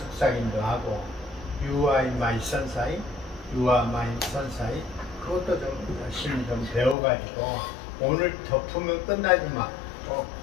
하고 You are my sunshine, You are my sunshine 그것도 좀 열심히 좀 배워가지고 오늘 덮으면 끝나지만 또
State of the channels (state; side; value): drops out; right; at 7.0 s